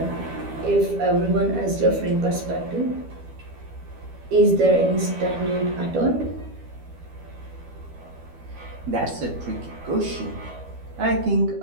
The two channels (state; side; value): late; left; 12 ms